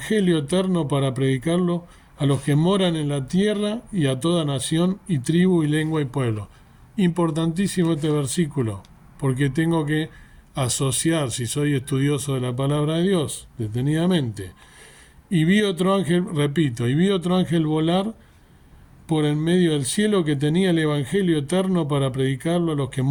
eterno para predicarlo a los que moran en la tierra y a toda nación y tribu y lengua y pueblo. Importantísimo este versículo, porque tengo que asociar, si soy estudioso de la palabra de Dios, detenidamente. Y vi otro ángel, repito, y vi otro ángel volar por en medio del cielo que tenía el evangelio eterno para predicarlo a los que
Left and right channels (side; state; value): both; identical; correlation 1.00